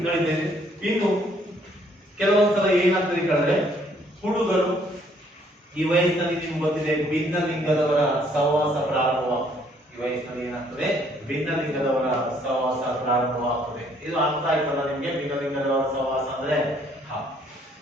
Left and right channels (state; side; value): normal; both; correlation 0.65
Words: ನಡೀತಾ ಇದೆ. ಇನ್ನು ಕೆಲವೊಂದ್ಸಲ ಏನಾಗ್ತದೆ ಕೇಳಿದ್ರೆ, ಹುಡುಗರು ಈ ವಯಸ್ಸಿನಲ್ಲಿ ನಿಮ್ಗೆ ಗೊತ್ತಿದೆ ಭಿನ್ನ ಲಿಂಗದವರ ಸಹವಾಸ ಪ್ರಾರಂಭವಾಗ್ತದೆ. ಈ ವಯಸ್ಸಿನಲ್ಲಿ ಏನಾಗ್ತದೆ? ಭಿನ್ನ ಲಿಂಗದವರ ಸಹವಾಸ ಪ್ರಾರಂಭವಾಗ್ತದೆ. ಇದು ಅರ್ಥ ಆಯ್ತಲ್ಲ ನಿಮ್ಗೆ? ಭಿನ್ನ ಲಿಂಗದವರ ಸಹವಾಸ ಅಂದ್ರೆ